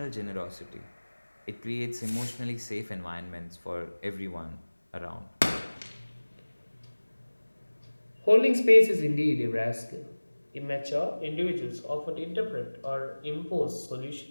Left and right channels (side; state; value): both; inverted; correlation -1.00